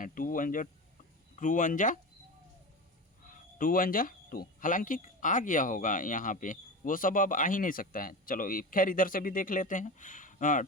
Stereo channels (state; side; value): normal; both; correlation 0.26